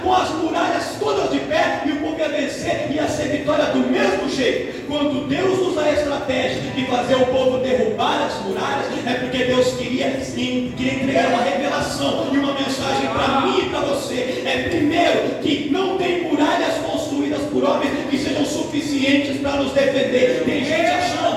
com as muralhas todas de pé, e o povo ia vencer, ia ser vitória do mesmo jeito. Quando Deus usa a estratégia de fazer o povo derrubar as muralhas, é porque Deus queria entregar uma revelação e uma mensagem para mim e para você. É primeiro que não tem muralhas construídas por homens que sejam suficientes para nos defender. Tem gente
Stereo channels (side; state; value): both; identical; correlation 1.00